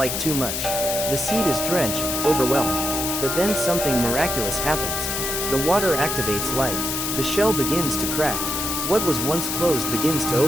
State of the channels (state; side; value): noise; left; hiss, 2 dB below the sound